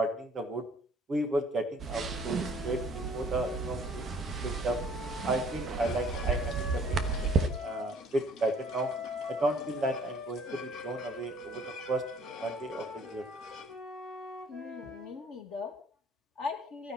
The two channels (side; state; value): both; normal; correlation 0.57